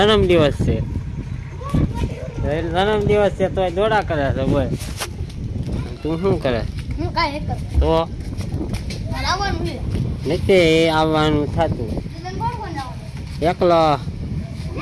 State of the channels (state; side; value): identical; both; correlation 1.00